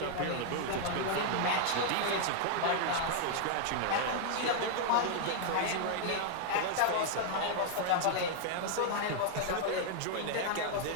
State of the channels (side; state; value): both; different; correlation 0.00